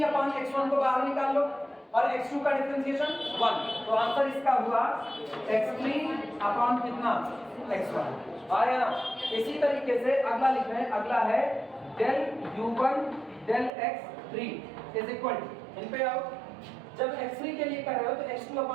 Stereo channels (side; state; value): left; drops out; at 13.7 s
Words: अपॉन x1 को बाहर निकाल लो और x2 का डिफरेंशिएशन 1, तो आंसर इसका हुआ x3 अपॉन कितना x1 आया ना। इसी तरीके से अगला लिख रहे हैं, अगला है del u1 del x3 is equal to इन पे आओ जब x3 के लिए कर रहे हो तो x2